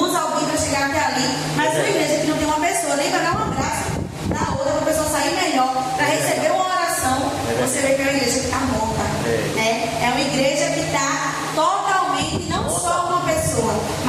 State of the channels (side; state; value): both; identical; correlation 1.00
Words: alguém para chegar até ali. Mas uma igreja que não tem uma pessoa nem para dar um abraço na outra, para a pessoa sair melhor, para receber uma oração, você vê que é uma igreja que está morta. Né? É uma igreja que está totalmente, não só uma pessoa,